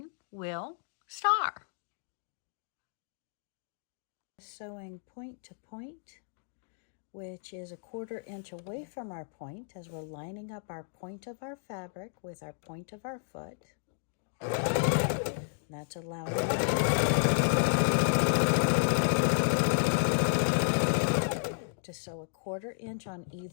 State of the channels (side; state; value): right; silent; digital silence